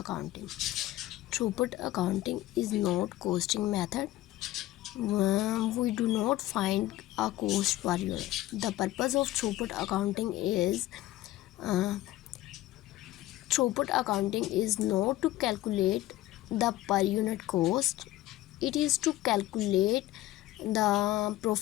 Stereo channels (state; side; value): quieter; right; 15.8 dB